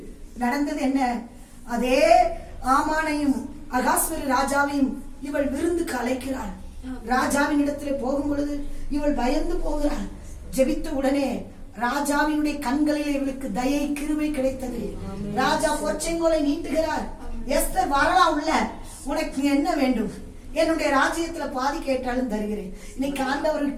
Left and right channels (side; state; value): both; identical; correlation 1.00